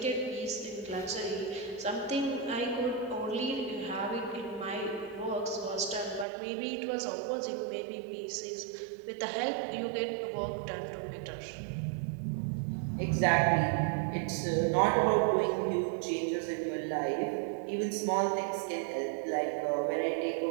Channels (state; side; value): drops out; left; at 6.2 s